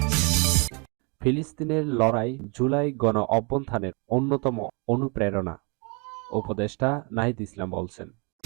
ফিলিস্তিনের লড়াই জুলাই গণ-অভ্যুত্থানের অন্যতম অনুপ্রেরণা, উপদেষ্টা নাহিদ ইসলাম বলছেন।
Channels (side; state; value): left; quieter; 32.8 dB